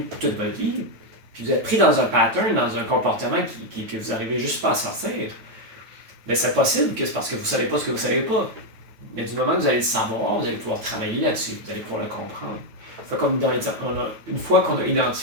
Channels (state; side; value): late; left; 9.2 ms